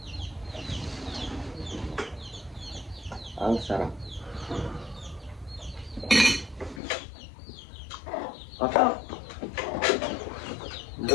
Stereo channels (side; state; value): right; drops out; at 6.8 s